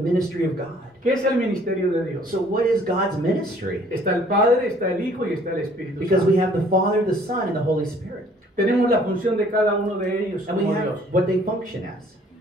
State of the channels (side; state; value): both; normal; correlation 0.58